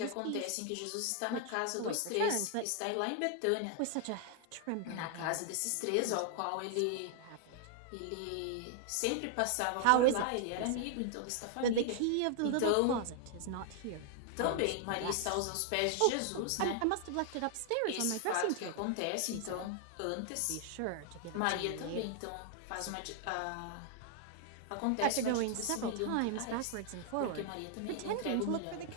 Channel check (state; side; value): different; both; correlation 0.00